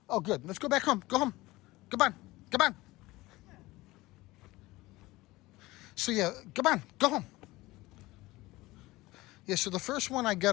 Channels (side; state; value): right; quieter; 19.6 dB